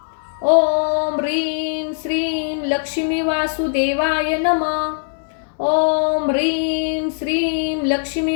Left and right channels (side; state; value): right; silent; digital silence